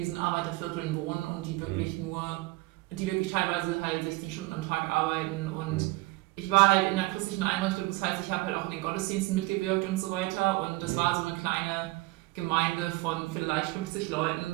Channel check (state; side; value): quieter; left; 21.7 dB